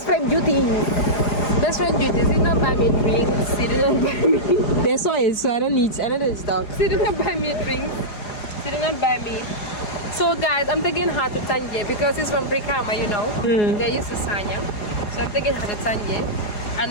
friend duties. Best friend duties. She did not buy me drinks. She did not buy me. They saw it, so I don't need stock. She did not buy me drinks. She did not buy me. So guys, I'm taking her to Tanje because she's from Brikama, you know. They're used to Sanyang. So I'm taking her to Tanje.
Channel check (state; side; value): late; right; 4.8 ms